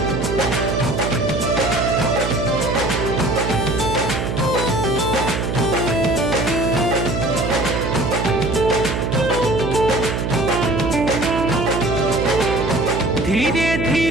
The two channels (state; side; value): noise; right; hum, 2 dB below the sound